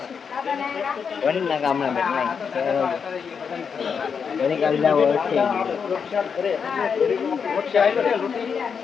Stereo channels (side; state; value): right; quieter; 6.4 dB